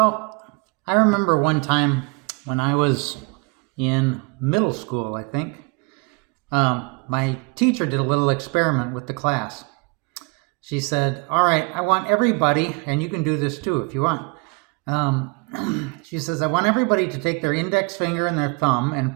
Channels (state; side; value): quieter; left; 30.6 dB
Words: I remember one time when I was in middle school, I think, my teacher did a little experiment with the class. She said, all right, I want everybody, and you can do this too if you want. She says, I want everybody to take their index finger and their thumb